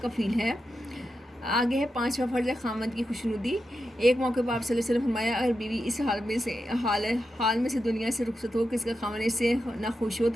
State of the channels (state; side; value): normal; both; correlation 0.88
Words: کفیل ہے۔ آگے ہے 5واں فرض ہے خاوند کی خوشنودی۔ ایک موقع پر آپ صلی اللہ علیہ وسلم فرمایا اگر بیوی اس حال میں سے دنیا سے رخصت ہو کہ اس کا خاوند اس سے نہ خوش ہو